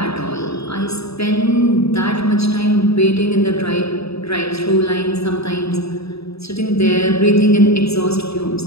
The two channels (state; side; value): late; right; 0.78 ms